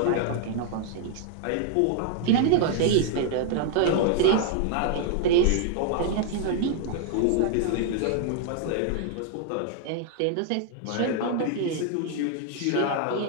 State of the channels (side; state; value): both; different; correlation 0.00